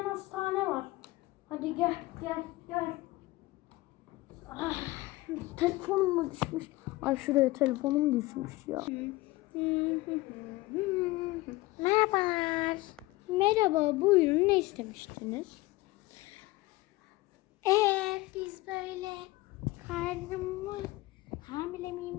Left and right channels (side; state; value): right; quieter; 20.1 dB